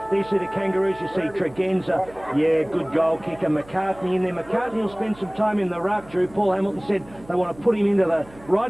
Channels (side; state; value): right; noise; hum, 23 dB below the sound